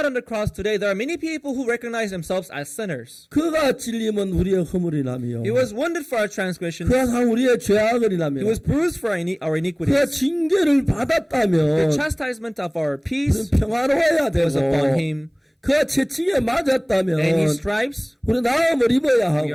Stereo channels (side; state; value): both; identical; correlation 1.00